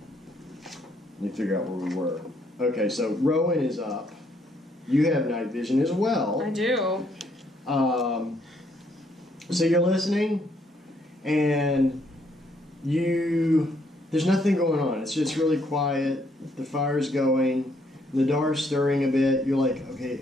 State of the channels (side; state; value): both; normal; correlation 0.70